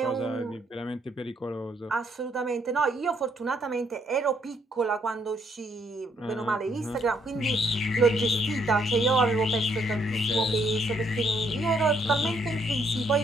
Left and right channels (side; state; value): both; normal; correlation 0.70